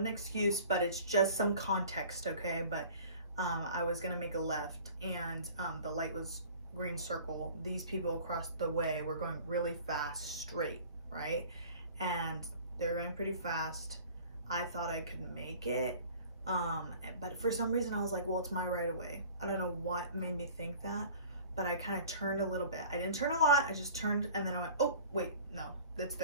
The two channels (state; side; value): inverted; both; correlation -0.45